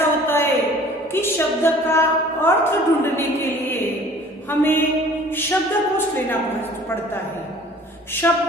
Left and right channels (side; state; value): both; normal; correlation 0.50